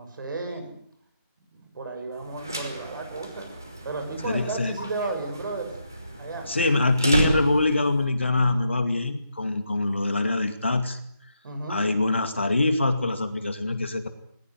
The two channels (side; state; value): both; inverted; correlation -0.80